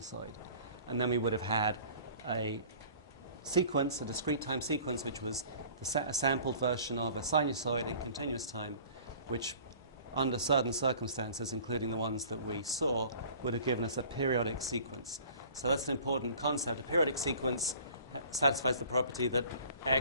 And then we would have had a sequence, a discrete time sequence, which was a sampled version of a sinusoid in continuous time, which under certain circumstances, including the ones that we saw, would have given us a periodic sequence. So that's an important concept. A periodic sequence satisfies the property that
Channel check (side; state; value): both; inverted; correlation -0.49